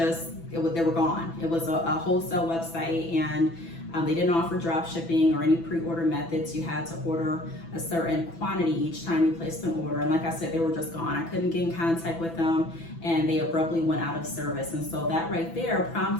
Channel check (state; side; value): late; right; 6.0 ms